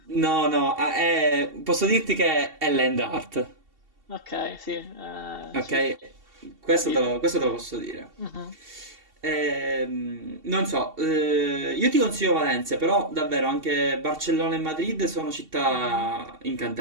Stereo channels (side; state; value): left; late; 2.7 ms